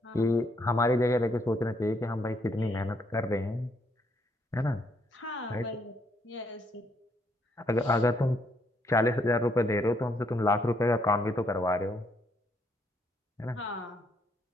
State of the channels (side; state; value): both; normal; correlation 0.71